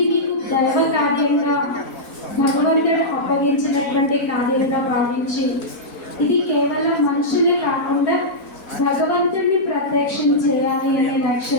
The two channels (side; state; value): right; late; 5.1 ms